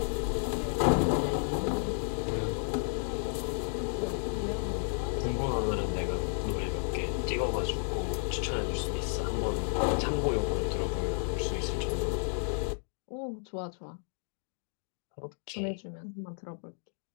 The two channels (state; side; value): silent; right; 56 dB below the other